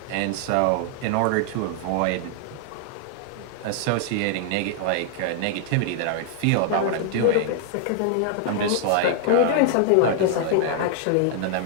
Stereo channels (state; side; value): different; both; correlation 0.00